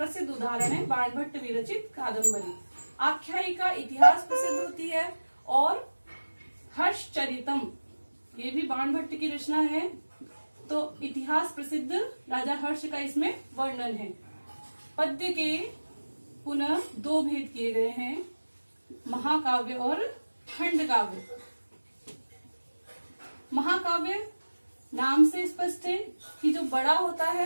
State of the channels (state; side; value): inverted; both; correlation -1.00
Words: उदाहरण है, बाणभट्ट विरचित कादम्बरी। आख्यायिका इतिहास प्रसिद्ध होती है। और हर्षचरितम, ये भी बाणभट्ट की रचना है, तो इतिहास प्रसिद्ध राजा हर्ष का इसमें वर्णन है। पद्य के पुनः 2 भेद किए गए हैं: महाकाव्य और खंड काव्य। महाकाव्य नाम से स्पष्ट है कि जो बड़ा होता